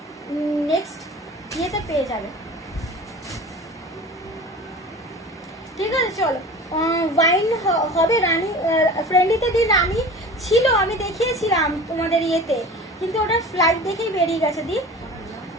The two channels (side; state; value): both; normal; correlation 0.38